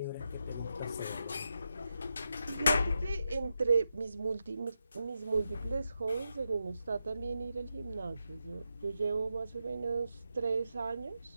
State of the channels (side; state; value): both; inverted; correlation -0.87